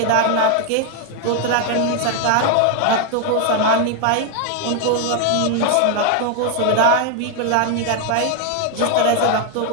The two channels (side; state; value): both; different; correlation 0.01